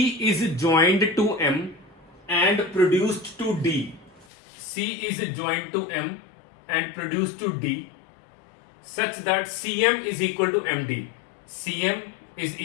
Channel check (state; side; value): drops out; right; at 4.2 s